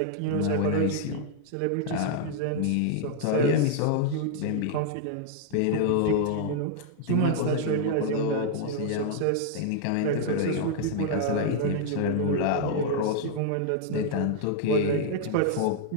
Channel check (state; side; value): different; both; correlation 0.00